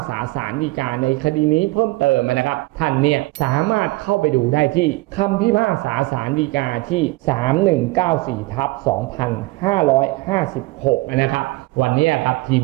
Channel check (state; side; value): quieter; left; 21.7 dB